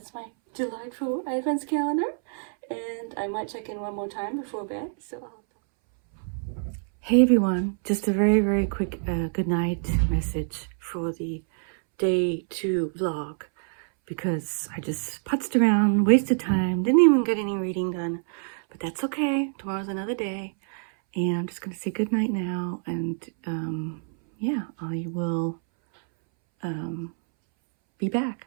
my delightful Advents calendar. And I might check in one more time before bed. So hey everyone, just a very, very quick good night message for the day 2 vlog, because I just putzed around, wasted time, didn't even get any reading done, but that's okay. Tomorrow's another day, and I'm just gonna say good night now, and yeah, I will be back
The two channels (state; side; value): silent; left; 61 dB below the other